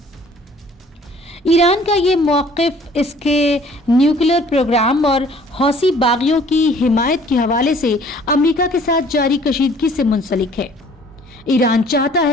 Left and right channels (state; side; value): normal; both; correlation 0.54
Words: ایران کا یہ موقف اس کے نیوکلیئر پروگرام اور حوثی باغیوں کی حمایت کے حوالے سے امریکہ کے ساتھ جاری کشیدگی سے منسلک ہے۔ ایران چاہتا